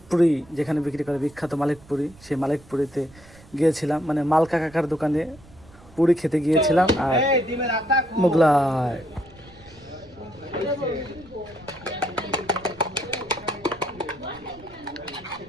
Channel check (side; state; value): right; noise; rumble, 23 dB below the sound